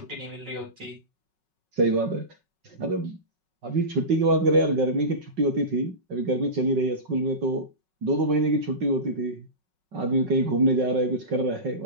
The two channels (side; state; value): left; late; 5.4 ms